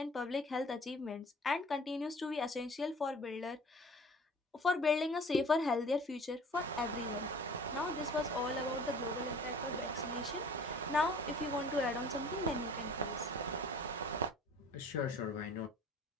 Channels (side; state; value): both; normal; correlation 0.48